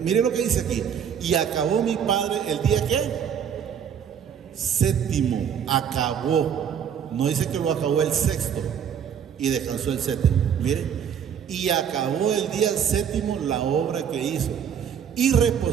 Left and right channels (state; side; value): quieter; left; 8.1 dB